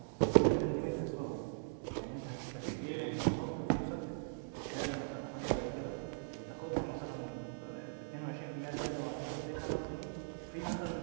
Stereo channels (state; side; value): silent; left; digital silence